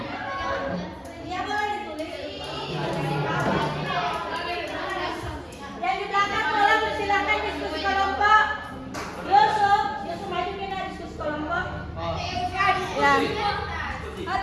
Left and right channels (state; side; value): identical; both; correlation 1.00